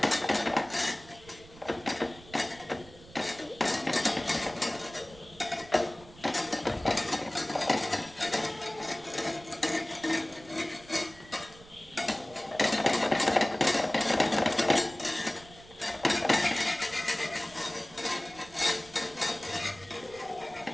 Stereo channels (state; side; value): noise; right; rumble, 21 dB below the sound